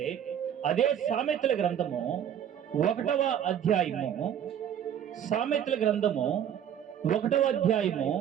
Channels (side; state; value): left; quieter; 9.4 dB